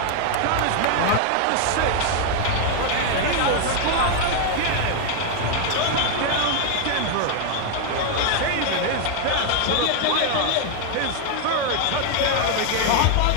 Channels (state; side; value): different; both; correlation 0.00